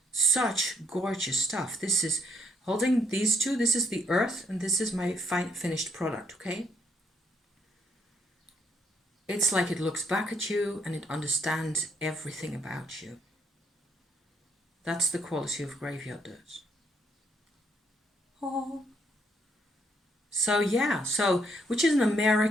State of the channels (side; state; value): both; normal; correlation 0.70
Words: such gorgeous stuff. This is, holding these two, this is the earth, and this is my finished product, okay? It's like it looks back at you and it understands everything about you. That's the quality of graveyard dirt. Oh. So yeah, which is an